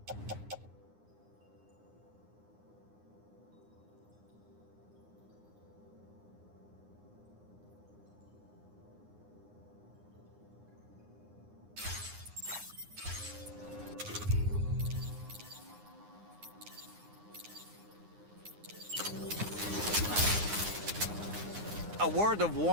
A word of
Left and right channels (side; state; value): left; late; 9.7 ms